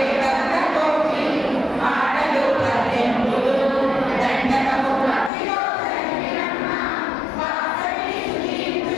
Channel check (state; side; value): drops out; right; at 5.3 s